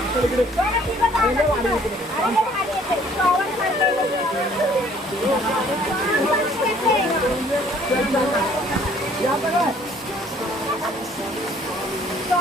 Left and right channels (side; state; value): both; normal; correlation 0.58